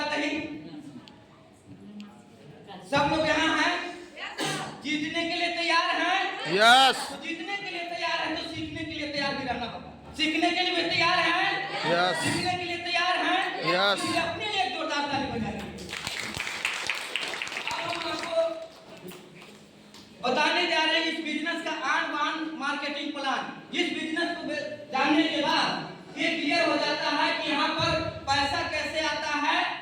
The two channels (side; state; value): both; identical; correlation 1.00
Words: नहीं, सब लोग यहाँ हैं, जीतने के लिए तैयार हैं? यस। तो जीतने के लिए तैयार हैं तो सीखने के लिए तैयार भी रहना होगा। सीखने के लिए भी तैयार हैं? यस। सीखने के लिए तैयार हैं? यस। इसलिए अपने लिए एक जोरदार ताली बजाइए। अब हम आपको बताने जा रहे हैं इस बिजनेस का आन बान मार्केटिंग प्लान। जिस बिजनेस को जानने के बाद ये क्लियर हो जाता है कि यहाँ पर पैसा कैसे आता है